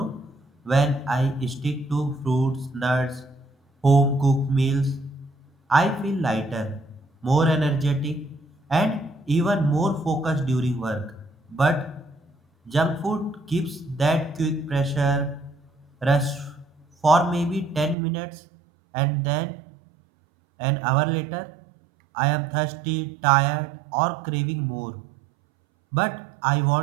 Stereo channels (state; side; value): drops out; left; at 17.9 s